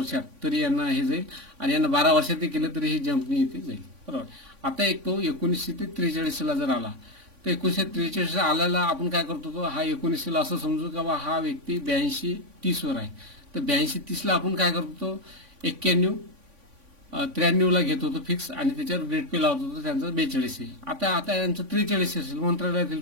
तरी यांना हे जाईल, आणि यांना 12 वर्षात केलं तरी हे जंपनी इथे जाईल. बरोबर. आता एक तो 1943 जर आला, तर 1943 आल्याला आपण काय करतो, तो हा 19 असं समजू का बा हा व्यक्ती 82-30 वर आहे, तर 82-30 आपण काय करतो, 91-93 घेत होतो फिक्स, आणि त्याच्यावर ग्रेड पे लावत होतो, त्यांचं 42 आहे. आता यांचं 43 असेल, मंत्रालयातील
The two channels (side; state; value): left; late; 3.5 ms